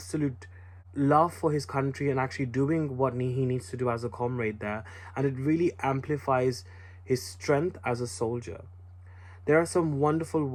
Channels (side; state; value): both; identical; correlation 1.00